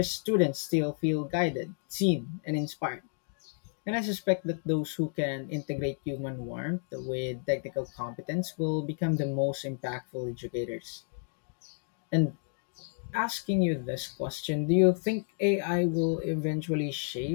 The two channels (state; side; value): silent; right; digital silence